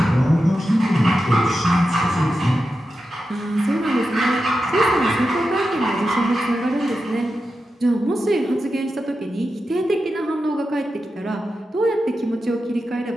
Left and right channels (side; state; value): both; normal; correlation 0.90